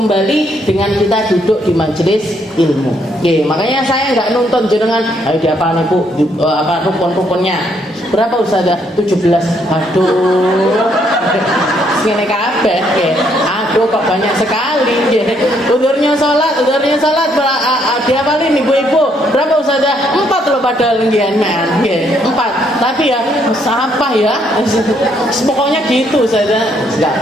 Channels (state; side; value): normal; both; correlation 0.71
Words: dengan kita duduk di majelis ilmu. Makanya saya nggak nuntut jenengan, ayo diapal nih Bu, apa rukun-rukunnya. Berapa Ustazah? 17. Aduh. Ngene kabeh nggih. Aduh kok banyak sekali nggih. Udurnya salat diapalin ibu-ibu. Berapa Ustazah? 4 loh padahal nggih nggih. 4. Tapi ya apa ya? Pokoknya gitu Ustazah. Enggak